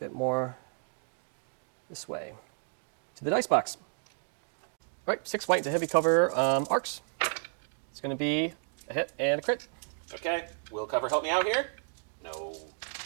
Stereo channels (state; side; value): silent; left; digital silence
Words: bit more this way to the dice box. All right, 6 white to heavy cover arcs. It's gonna be a hit and a crit. Okay, will cover help me out here? No.